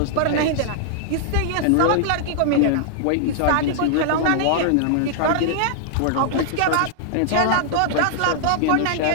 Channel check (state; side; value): different; both; correlation -0.01